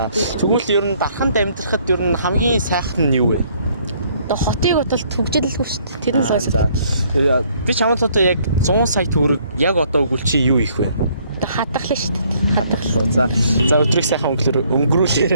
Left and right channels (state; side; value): inverted; both; correlation -0.65